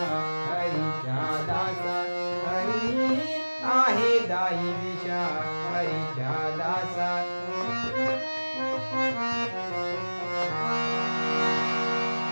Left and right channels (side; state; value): both; inverted; correlation -1.00